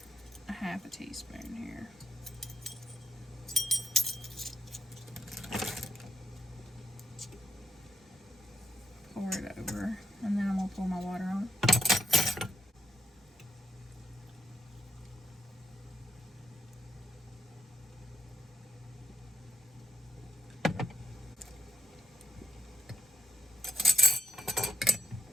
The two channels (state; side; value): normal; both; correlation 0.83